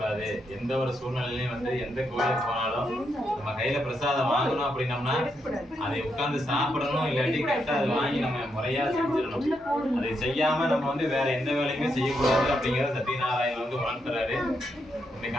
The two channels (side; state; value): both; normal; correlation 0.81